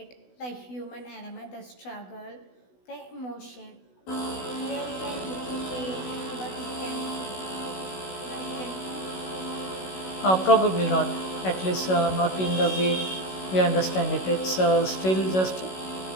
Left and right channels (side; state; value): right; late; 16 ms